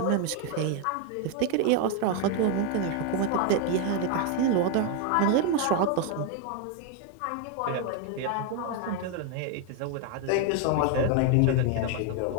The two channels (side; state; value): both; different; correlation 0.01